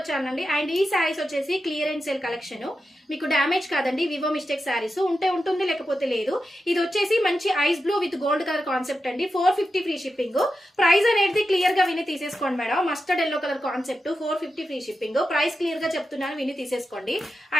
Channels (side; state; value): both; normal; correlation 0.90